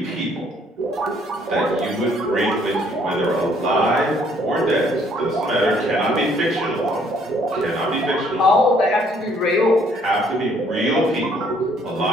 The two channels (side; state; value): both; normal; correlation 0.64